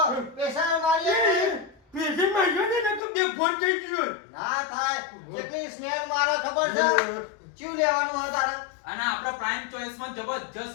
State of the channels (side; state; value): right; drops out; at 3.0 s